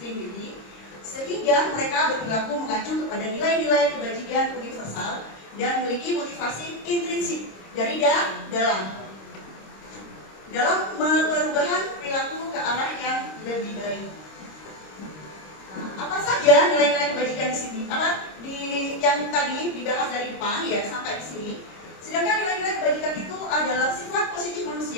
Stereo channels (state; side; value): late; right; 26 ms